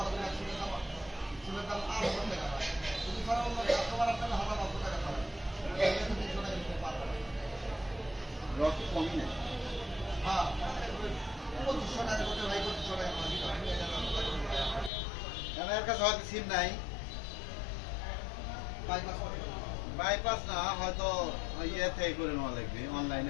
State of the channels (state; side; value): drops out; right; at 14.9 s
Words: রক্ত কমই নেই এর কাছে হয়তো সিম নাই বাইপাস না হয়তো ইয়ে থেকে করে নেওয়া লাগবে অনলাইনে